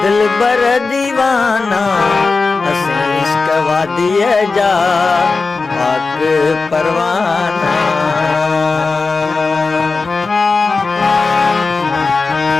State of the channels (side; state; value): right; quieter; 4.1 dB